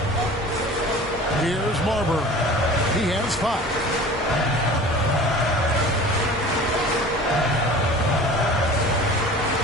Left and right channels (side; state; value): both; normal; correlation 0.41